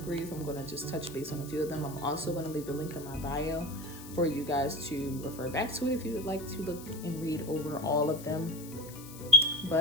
grief. I'm going to just touch base on a few of them. I'm also going to leave the link in my bio for you guys to refer back to it if you would like to look and read over all of them.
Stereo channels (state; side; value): noise; left; hiss, 16 dB below the sound